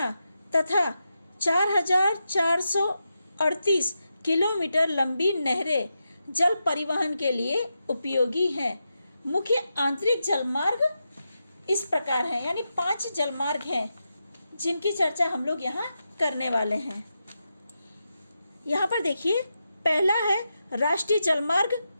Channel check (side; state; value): both; inverted; correlation -0.88